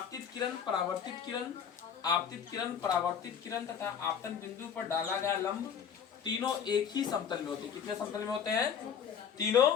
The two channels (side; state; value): right; quieter; 7.7 dB